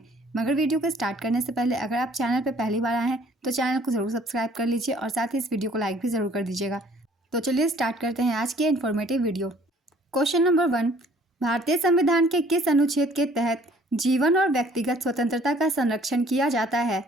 मगर वीडियो को स्टार्ट करने से पहले अगर आप चैनल पर पहली बार आए हैं तो चैनल को ज़रूर सब्सक्राइब कर लीजिए और साथ ही इस वीडियो को लाइक भी ज़रूर कर दीजिएगा। तो चलिए स्टार्ट करते हैं आज की इन्फॉर्मेटिव वीडियो। क्वेश्चन नंबर 1, भारतीय संविधान के किस अनुच्छेद के तहत जीवन और व्यक्तिगत स्वतंत्रता का संरक्षण किया जाता है?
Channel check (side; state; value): both; normal; correlation 0.57